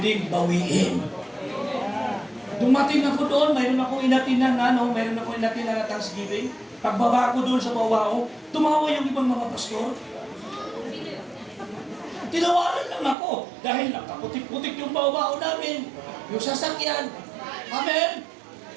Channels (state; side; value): drops out; left; at 13.2 s